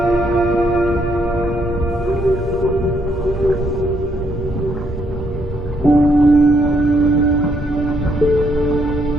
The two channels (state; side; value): normal; both; correlation 0.72